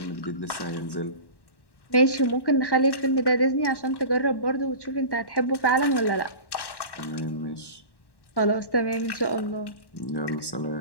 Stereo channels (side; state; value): right; late; 1.1 ms